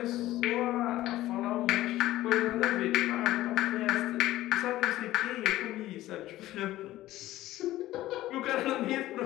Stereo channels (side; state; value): right; quieter; 15.5 dB